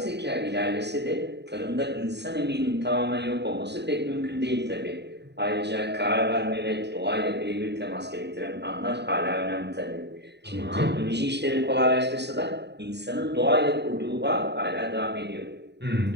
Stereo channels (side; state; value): left; late; 0.50 ms